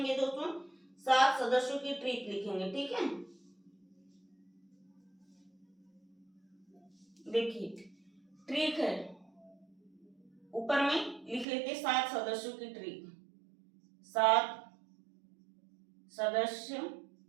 दोस्तों, 7 सदस्यों की ट्रिक लिखेंगे, ठीक है। देखिए ट्रिक है, ऊपर में लिख लेते 7 सदस्यों की ट्रिक। 7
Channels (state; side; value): drops out; left; at 11.5 s